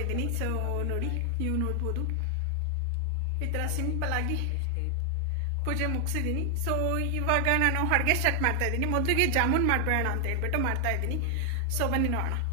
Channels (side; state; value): both; different; correlation 0.00